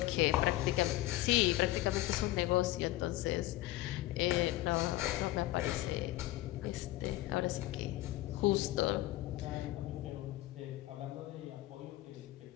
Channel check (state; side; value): quieter; right; 16.8 dB